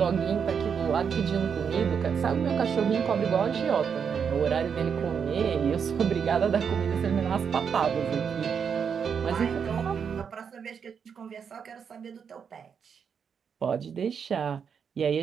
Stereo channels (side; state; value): left; quieter; 6.9 dB